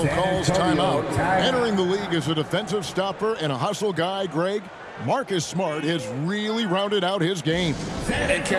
calls timeout. Entering the league as a defensive stopper and a hustle guy, Greg, Marcus Smart has really rounded out his game. And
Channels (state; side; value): identical; both; correlation 1.00